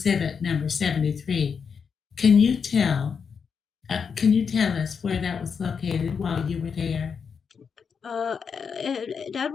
number 73. Can you tell? Can you tell us where that was located while you were there? that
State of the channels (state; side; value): quieter; right; 6.2 dB